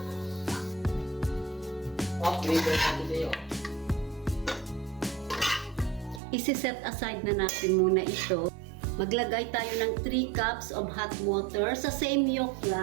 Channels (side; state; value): left; drops out; at 6.2 s